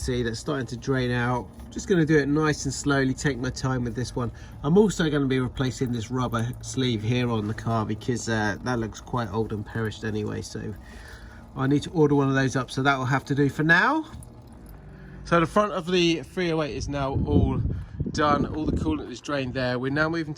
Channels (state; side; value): identical; both; correlation 1.00